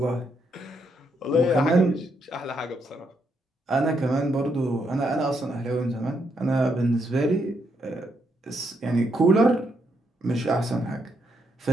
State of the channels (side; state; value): both; normal; correlation 0.77